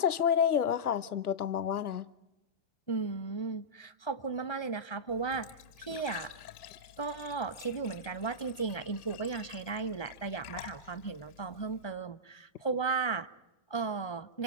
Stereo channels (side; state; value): right; late; 1.3 ms